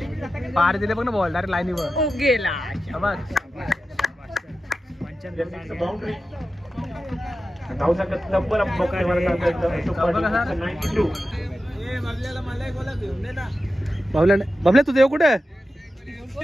पार दिले बघ ना बॉल डायरेक्ट लाईनीवर ओ गेला बघ बाउंड्री धावचा तब्बल बबल्या तुझं येऊ कुठे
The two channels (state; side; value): normal; both; correlation 0.92